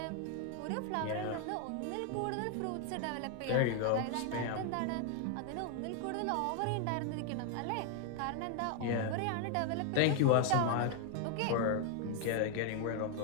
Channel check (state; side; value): different; both; correlation 0.00